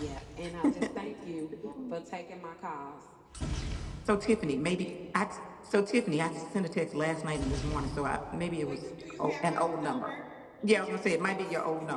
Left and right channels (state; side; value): identical; both; correlation 1.00